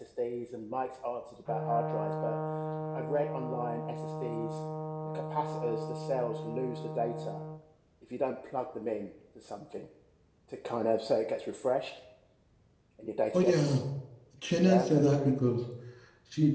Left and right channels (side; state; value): both; identical; correlation 1.00